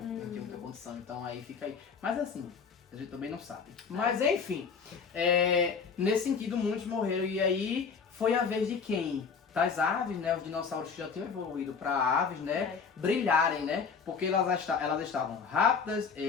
tinha muita condição, então aí fica aí. Mas assim, a gente também não sabe. Mas enfim, nesse sentido muitos morreram e aí foi a vez de quem? Das aves, né? Os dinossauros que já tinham evoluído para aves, né? Brilharem, né? Porque elas estavam rápidas,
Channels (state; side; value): quieter; right; 5.7 dB